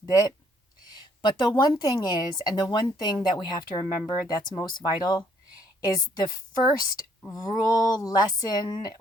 bit. But the one thing is, and the one thing that we have to remember that's most vital, is the first rule, lesson,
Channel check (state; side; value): normal; both; correlation 0.66